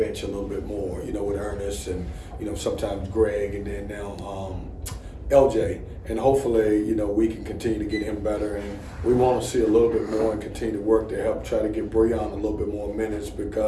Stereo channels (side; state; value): both; identical; correlation 1.00